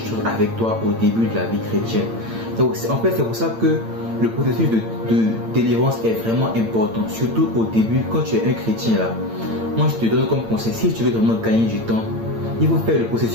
avec toi au début de la vie chrétienne. Donc en fait, c'est pour ça que le processus de délivrance est vraiment important, surtout au début quand tu es un chrétien là. Moi, je te donne comme conseil, si tu veux vraiment gagner du temps, il faut faire le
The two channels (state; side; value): late; left; 8.8 ms